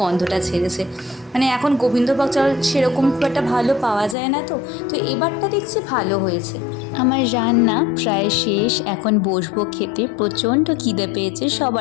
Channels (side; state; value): right; drops out; at 4.2 s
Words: গন্ধটা ছেড়েছে। মানে এখন গোবিন্দভোগ চাল সেরকম খুব একটা ভালো পাওয়া যায় না, তো এবারটা দেখছি ভালো হয়েছে। আমার রান্না প্রায় শেষ, এখন বসবো খেতে। প্রচণ্ড খিদে পেয়েছে,